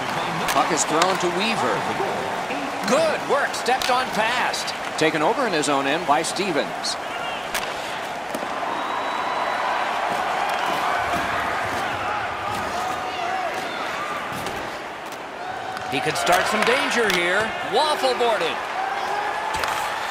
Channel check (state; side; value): identical; both; correlation 1.00